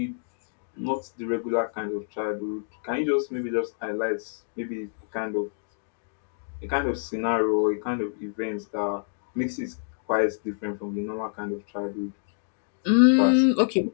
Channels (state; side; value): silent; right; digital silence